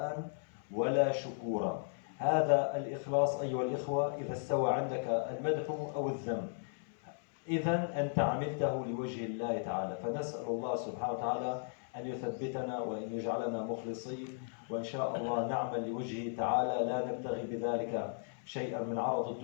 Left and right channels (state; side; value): silent; right; 54 dB below the other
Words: ولا شكورا. هذا الإخلاص أيها الإخوة إذا استوى عندك المدح أو الذم، إذا أنت عملته لوجه الله تعالى. فنسأل الله سبحانه وتعالى أن يثبتنا وأن يجعلنا مخلصين، وإن شاء الله نعمل لوجهه تعالى لا نبتغي بذلك شيئا من عرض